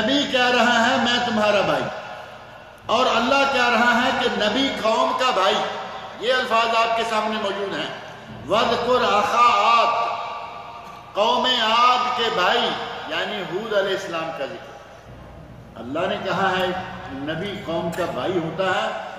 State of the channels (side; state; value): both; identical; correlation 1.00